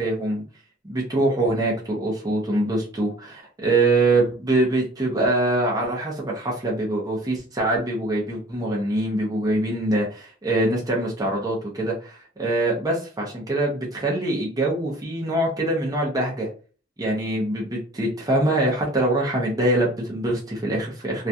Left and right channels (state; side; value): normal; both; correlation 0.48